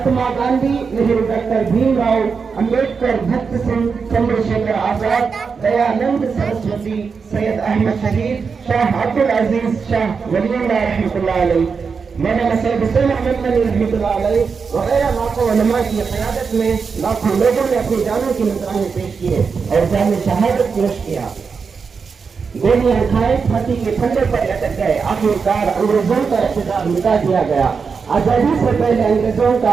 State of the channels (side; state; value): left; quieter; 5.5 dB